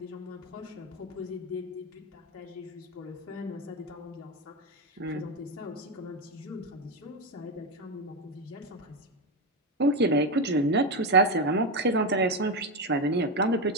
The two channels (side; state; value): both; normal; correlation 0.11